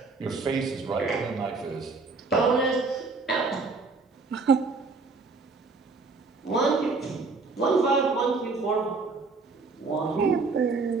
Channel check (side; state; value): left; quieter; 4.1 dB